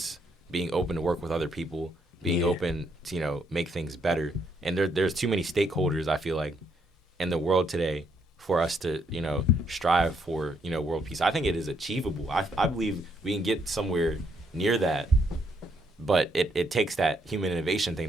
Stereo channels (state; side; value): normal; both; correlation 0.73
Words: being open to work with other people, being open to, you know, make things better. And there's too many stakeholders, I feel like, in the world today for us to, you know, strive for, you know, world peace. I think it is achievable. I believe we can get somewhere near that, but it takes that human innovation thing